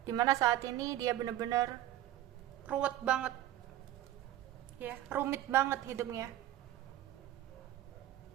Dimana saat ini dia benar-benar ruwet banget, ya, rumit banget hidupnya.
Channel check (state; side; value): quieter; left; 13.6 dB